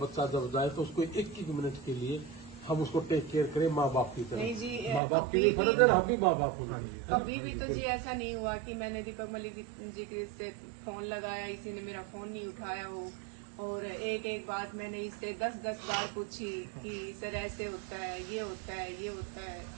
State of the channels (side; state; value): left; drops out; at 5.0 s